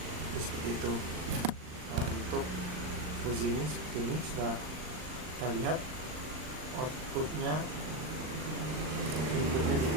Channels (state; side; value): late; left; 39 ms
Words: Jadi, seperti itu. Nah, untuk fuzi ini seperti ini sudah kita lihat outputnya Berikutnya